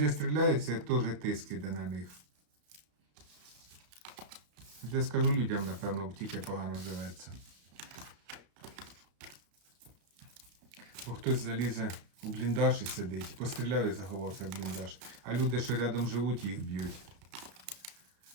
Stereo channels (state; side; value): late; left; 33 ms